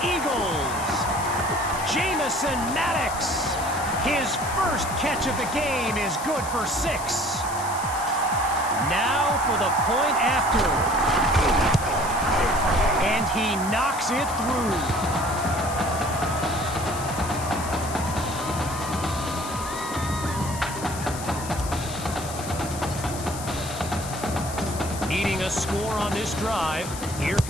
Eagles. Jamison Maddox. His first catch of the game is good for 6. Now for the point after. And he knocks it through. Needing a score on this drive, here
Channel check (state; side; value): noise; left; hiss, 11 dB below the sound